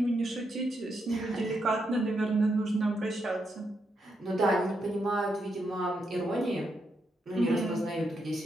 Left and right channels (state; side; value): normal; both; correlation 0.81